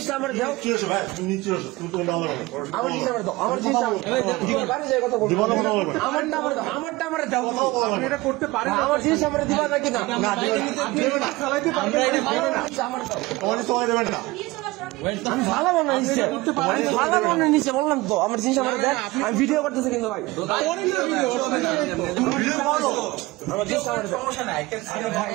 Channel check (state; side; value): quieter; left; 20.7 dB